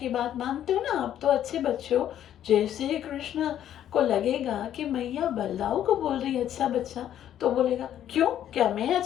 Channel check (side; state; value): right; quieter; 10.9 dB